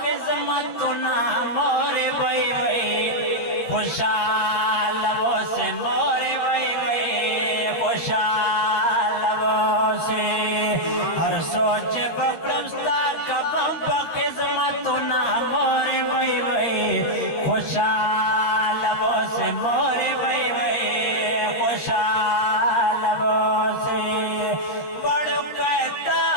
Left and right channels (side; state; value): right; late; 13 ms